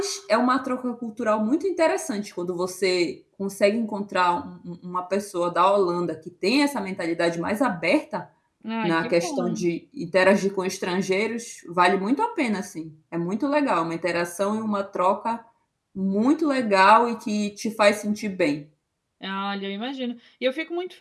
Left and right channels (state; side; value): identical; both; correlation 1.00